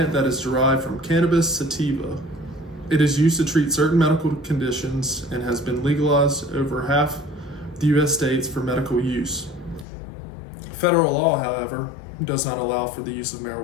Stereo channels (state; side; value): drops out; right; at 9.9 s